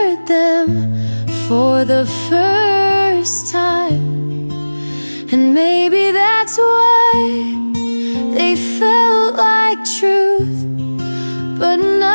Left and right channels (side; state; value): both; inverted; correlation -1.00